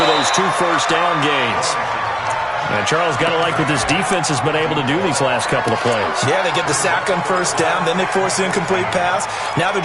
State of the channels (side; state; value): both; identical; correlation 1.00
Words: those 2 first down gains. And Charles, got to like what this defense has been able to do these last couple of plays. Yeah, they get the sack on first down, then they force the incomplete pass. Now they're